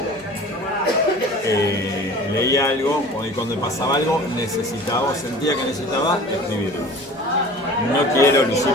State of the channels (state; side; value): normal; both; correlation 0.42